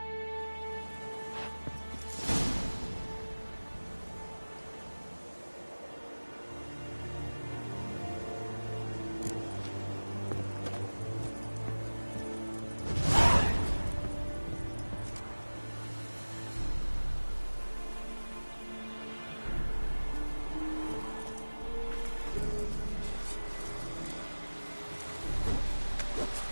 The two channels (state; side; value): inverted; both; correlation -1.00